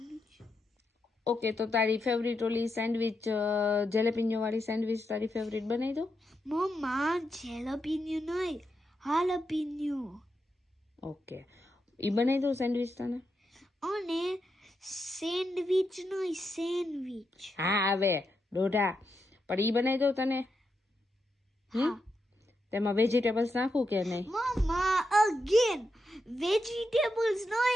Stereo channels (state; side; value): normal; both; correlation 0.84